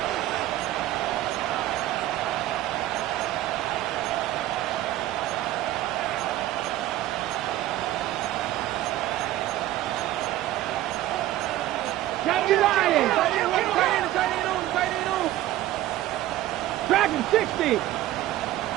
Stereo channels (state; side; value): quieter; left; 14.5 dB